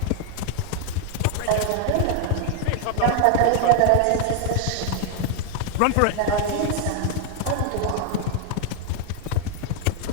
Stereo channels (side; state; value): both; different; correlation 0.00